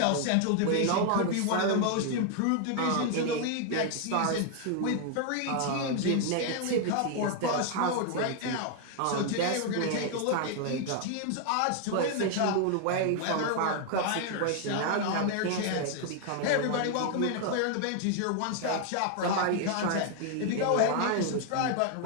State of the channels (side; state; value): both; different; correlation 0.00